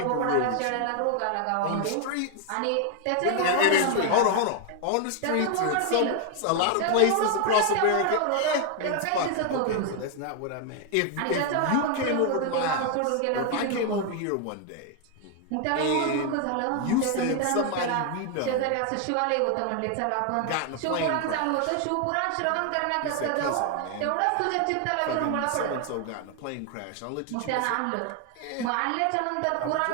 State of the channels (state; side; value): different; both; correlation 0.00